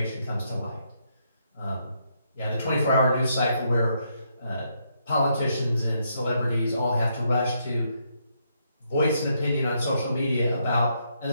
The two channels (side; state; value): both; inverted; correlation -0.76